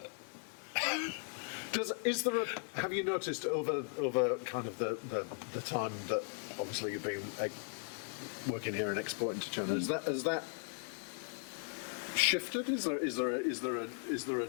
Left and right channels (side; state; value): right; silent; 53 dB below the other